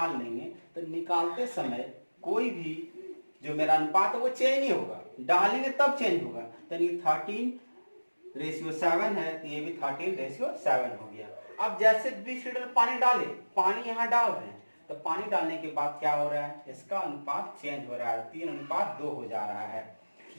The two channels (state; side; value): inverted; both; correlation -1.00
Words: लेंगे तो निकालते समय कोई भी जो मेरा अनुपात है वो चेंज नहीं होगा, डालेंगे तब चेंज होगा। यानी 13:7 है, तो ये भी 13:7 हो गया। अब जैसे 20 लीटर पानी डाले, पानी यहाँ डाल रहे हैं, तो पानी डालने के बाद क्या हो रहा है, इसका अनुपात चेंज हो रहा है, 3:2 हो जा रहा है।